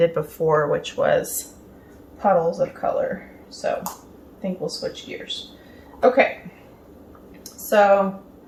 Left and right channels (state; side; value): identical; both; correlation 1.00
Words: before, which was puddles of color. So I think we'll switch gears. Okay, so